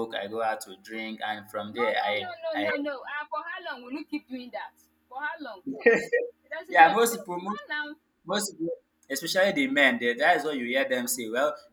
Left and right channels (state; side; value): identical; both; correlation 1.00